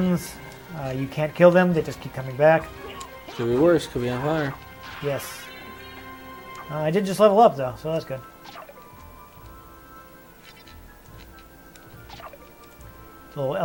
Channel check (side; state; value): both; identical; correlation 1.00